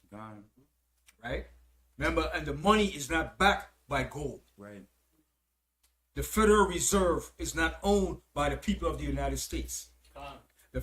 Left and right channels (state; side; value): identical; both; correlation 1.00